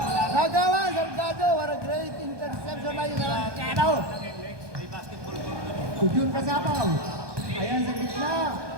Nagawa, Salgado, what a great interception by Salgado. June Kasapaw. Ayan sa gitna.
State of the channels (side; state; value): left; late; 1.2 ms